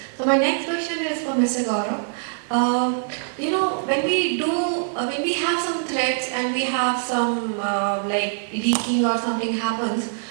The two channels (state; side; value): silent; left; 63 dB below the other